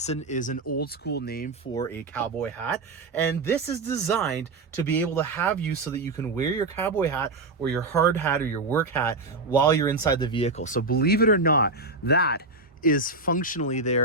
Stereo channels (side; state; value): left; quieter; 3.3 dB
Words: is an old school name for a cowboy hat, and this is designed to be able to have you so that you can wear your cowboy hat or your hard hat or your work hat while you're inside the vehicle. So believe it or not, that is functionally